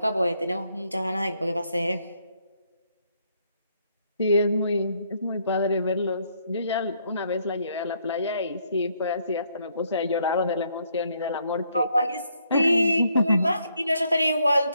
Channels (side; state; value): both; inverted; correlation -0.71